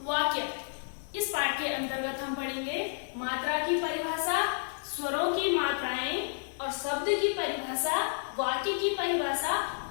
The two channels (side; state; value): right; silent; digital silence